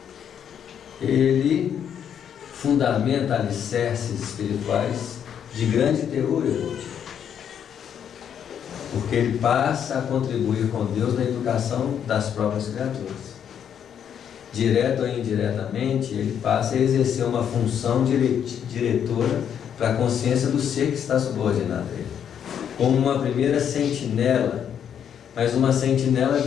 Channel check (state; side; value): quieter; right; 8.7 dB